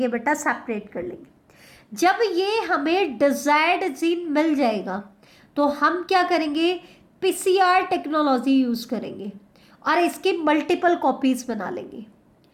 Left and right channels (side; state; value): both; identical; correlation 1.00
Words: बेटा, सेपरेट कर लेंगे। जब ये हमें डिजायर्ड जीन मिल जाएगा तो हम क्या करेंगे, पीसीआर टेक्नोलॉजी यूज करेंगे और इसकी मल्टीपल कॉपीज बना लेंगे,